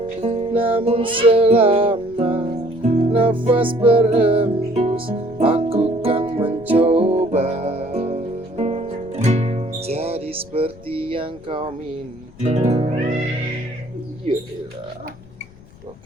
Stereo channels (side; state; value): left; noise; rumble, 22 dB below the sound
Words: namun selama nafas berhembus aku kan mencoba jadi seperti yang kau minta. Iyalah,